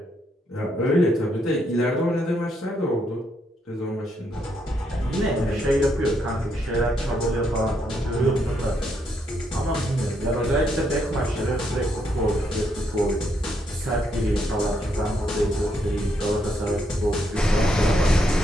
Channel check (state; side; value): normal; both; correlation 0.76